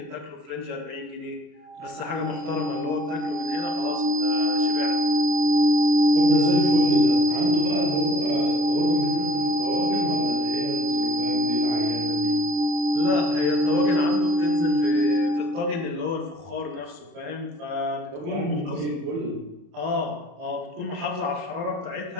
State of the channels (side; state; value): left; late; 34 ms